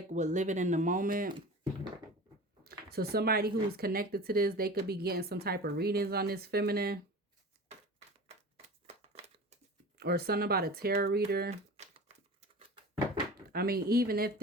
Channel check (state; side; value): normal; both; correlation 0.36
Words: with living in the moment. So somebody who's connected to this, they could be getting some type of readings on this feminine. Or something about a tarot reader. I mean, even if